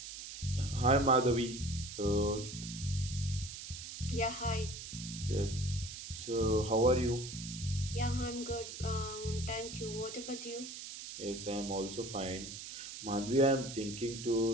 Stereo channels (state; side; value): noise; right; hiss, 10 dB below the sound